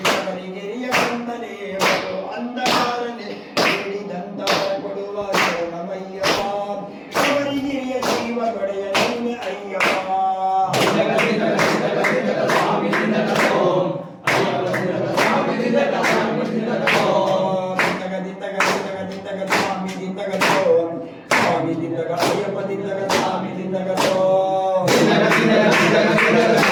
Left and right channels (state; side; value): identical; both; correlation 1.00